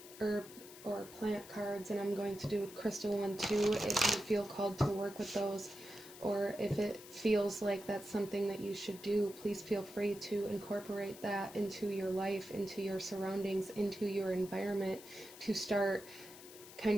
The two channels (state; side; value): noise; left; hiss, 17 dB below the sound